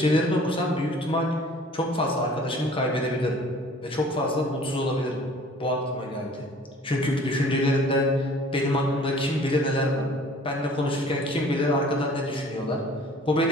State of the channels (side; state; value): both; normal; correlation 0.50